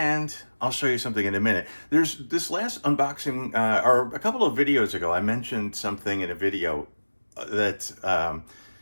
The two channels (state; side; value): inverted; both; correlation -1.00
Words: I'll show you something in a minute. There's this last unboxing, or a couple of videos ago, I mentioned something in a video that